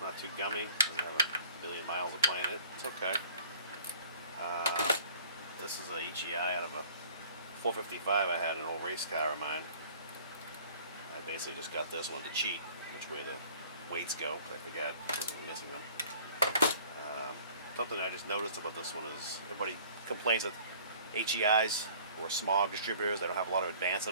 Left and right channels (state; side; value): inverted; both; correlation -0.51